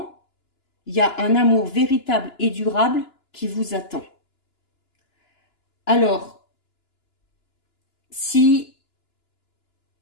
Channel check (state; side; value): late; right; 2.9 ms